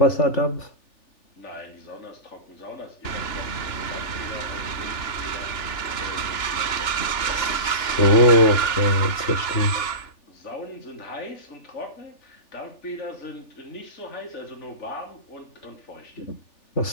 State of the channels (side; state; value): right; late; 3.4 ms